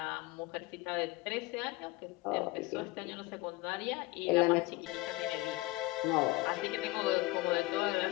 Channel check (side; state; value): right; quieter; 20.8 dB